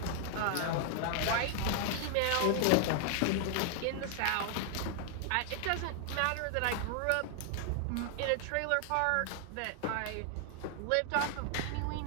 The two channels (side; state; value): both; different; correlation 0.00